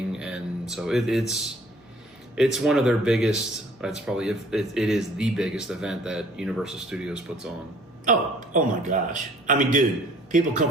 and so it's one of their biggest. It's probably it is the biggest event that Universal Studios puts on. Oh my gosh! I mean, dude, people come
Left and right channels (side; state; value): both; normal; correlation 0.54